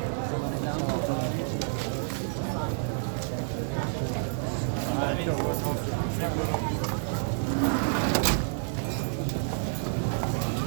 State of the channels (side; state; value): left; silent; digital silence